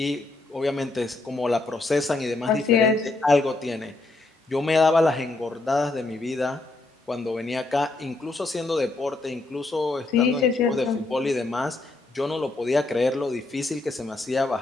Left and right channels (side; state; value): right; quieter; 3.2 dB